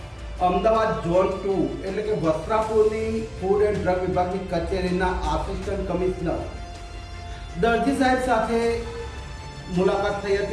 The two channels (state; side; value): identical; both; correlation 1.00